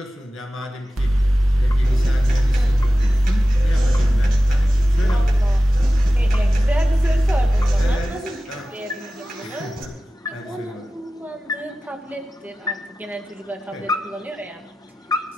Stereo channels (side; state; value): both; normal; correlation 0.95